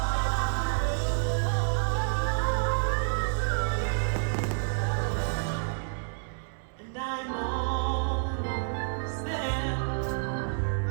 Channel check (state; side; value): silent; left; 59 dB below the other